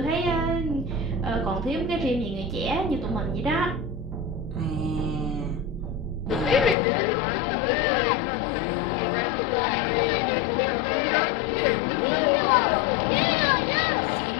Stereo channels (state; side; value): drops out; right; at 6.8 s